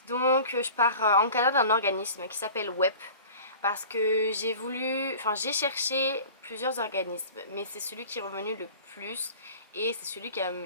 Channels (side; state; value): both; inverted; correlation -0.42